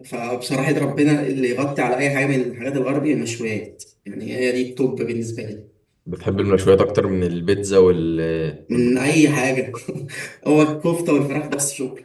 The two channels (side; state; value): both; identical; correlation 1.00